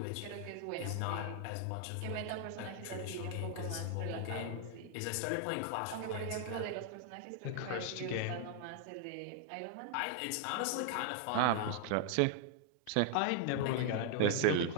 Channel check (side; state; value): both; different; correlation 0.00